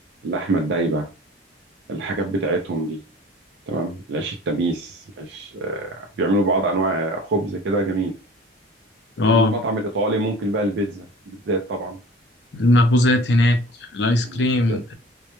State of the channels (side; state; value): both; normal; correlation 0.45